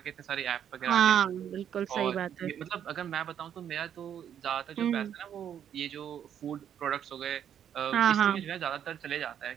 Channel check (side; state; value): left; quieter; 9.3 dB